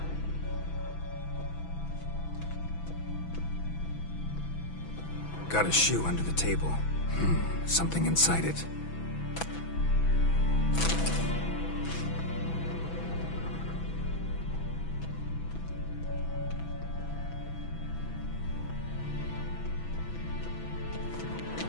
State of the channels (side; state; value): right; late; 6.0 ms